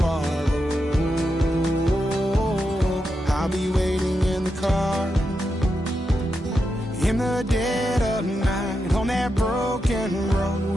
are. Oh, I'll be waiting in the car. In the dead of night, on that broken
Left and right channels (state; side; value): normal; both; correlation 0.86